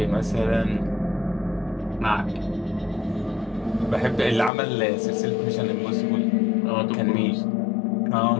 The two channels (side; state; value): right; drops out; at 4.5 s